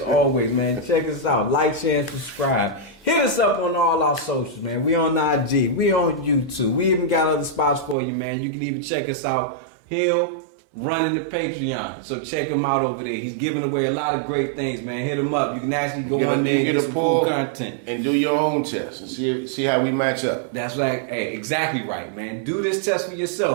always, man, check us out. Like, share, and subscribe. Hit us up on all our socials, man. We on IG. We on YouTube. We even got other spots for you, man. You can even check us out. Hill running the Patreon. So check him out over there. He's giving away a lot of great things, man. Hit him up. You can actually go on there and get some cool content. And do your own test and see how we match up. That's right. Hey, exactly right, man. Do this test for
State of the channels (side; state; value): left; drops out; at 8.0 s